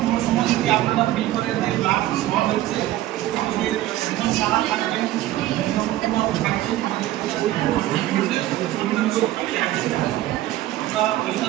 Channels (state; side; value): quieter; left; 14.9 dB